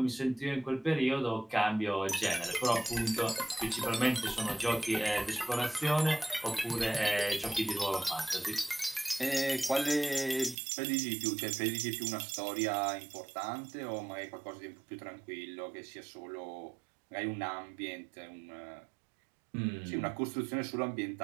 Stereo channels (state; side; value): drops out; left; at 10.6 s